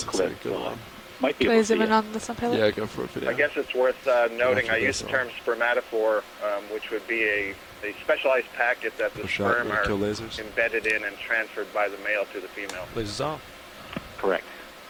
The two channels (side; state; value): both; identical; correlation 1.00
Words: is a clip, good one. might be Can I able to zoom see in it. on this one, Pilot? Yeah, go for it. Video. I guess it's worth noting I use the term spermatophore, which would be a specialized packet that the For shot, sperm are kill lasers. embedded in and transferred by the male to the female. Lasers off. Correct.